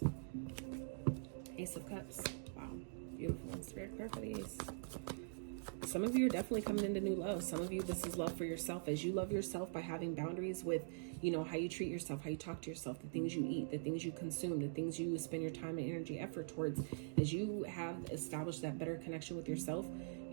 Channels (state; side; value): silent; left; digital silence